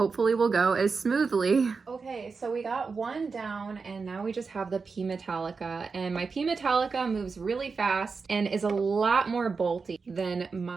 will go as smoothly. Okay, so we got one down and now we just have the P Metallica. And my P Metallica moves really fast and is a lot more bolty than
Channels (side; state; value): left; quieter; 4.8 dB